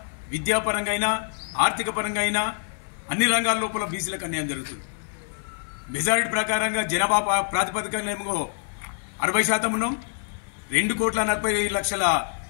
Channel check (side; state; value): right; silent; digital silence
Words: విద్యాపరంగా అయినా ఆర్థిక పరంగా అయినా అన్ని రంగాల లోపల బీసీలకు అన్యాయం జరుగుతుంది. మెజారిటీ ప్రకారంగా జనాభా ప్రాతిపదికనేమో 60% ఉన్నాం. 2,40,00,000